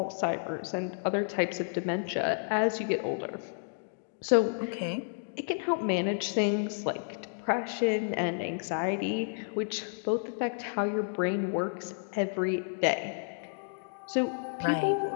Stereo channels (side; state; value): right; silent; digital silence